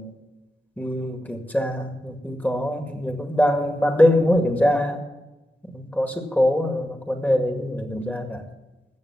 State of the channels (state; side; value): normal; both; correlation 0.89